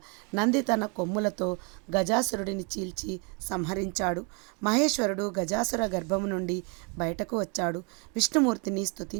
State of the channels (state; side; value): quieter; left; 34.3 dB